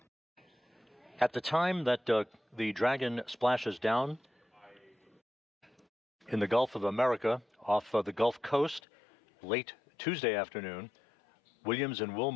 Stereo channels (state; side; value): drops out; right; at 8.8 s